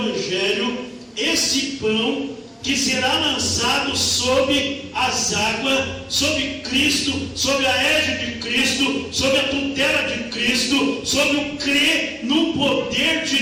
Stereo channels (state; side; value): identical; both; correlation 1.00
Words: esse pão que será lançado sobre as águas, sobre Cristo, sobre a égide de Cristo, sobre a tutela de Cristo, sobre o crer no poder